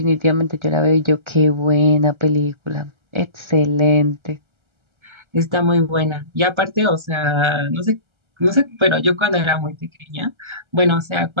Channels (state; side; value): late; left; 1.3 ms